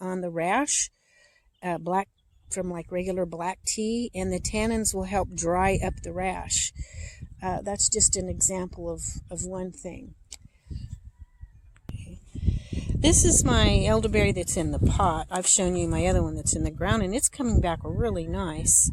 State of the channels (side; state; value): both; identical; correlation 1.00